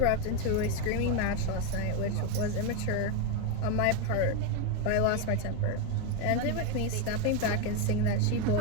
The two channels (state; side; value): different; both; correlation 0.02